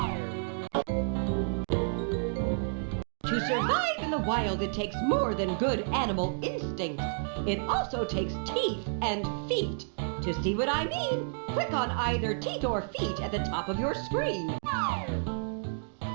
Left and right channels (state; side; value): silent; left; digital silence